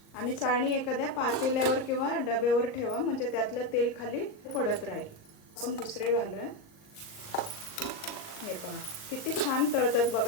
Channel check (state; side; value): late; right; 38 ms